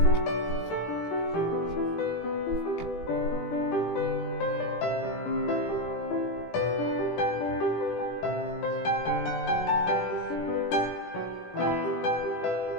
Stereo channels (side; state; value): right; late; 17 ms